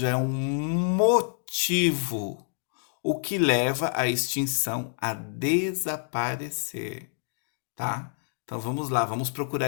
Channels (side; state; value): right; silent; digital silence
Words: é um motivo, o que leva à extinção a desaparecer, tá? Então vamos lá, vamos